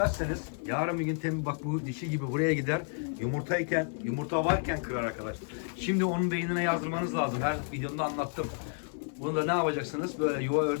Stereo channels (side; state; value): right; silent; 57 dB below the other